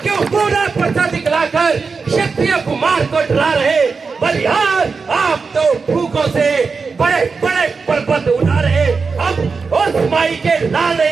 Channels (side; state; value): left; quieter; 4.8 dB